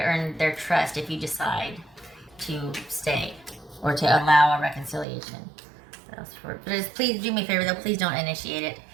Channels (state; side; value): drops out; left; at 5.1 s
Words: their trust if you decide to stay or to allow a reconciliation. But please do me a favor though, please don't initiate it.